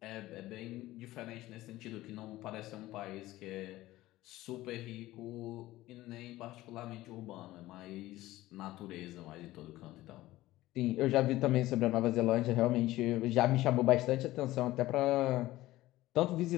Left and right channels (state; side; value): quieter; right; 16.7 dB